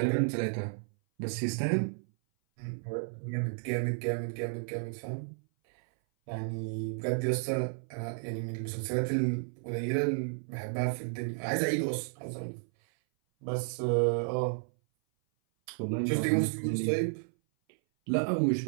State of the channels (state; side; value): silent; left; 56 dB below the other